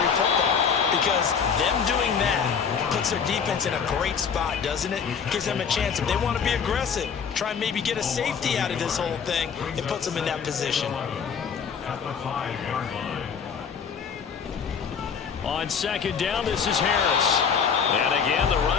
football. Because them doing that puts their defense in a great spot, doesn't it? Gives them a chance. If they want to be aggressive, try and maybe get a safety out of this whole thing, it puts them in that position. At the 5-yard line. On 2nd down, this is Harris. And again, the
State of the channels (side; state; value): right; quieter; 6.6 dB